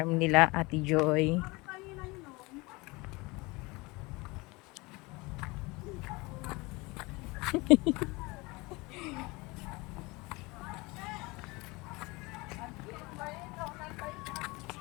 nila Ate Joy.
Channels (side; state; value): right; quieter; 24.3 dB